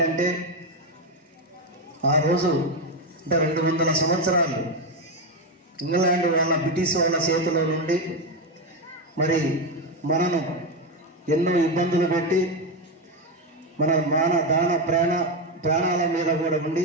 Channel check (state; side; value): normal; both; correlation 0.10